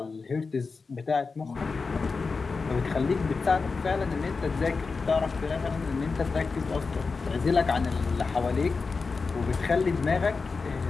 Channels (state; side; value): quieter; right; 4.5 dB